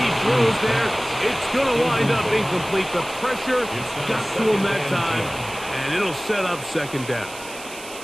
throws there. It's going to wind up incomplete. The pressure got to him that time, and it'll set up second down.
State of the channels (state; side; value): noise; right; hiss, 15 dB below the sound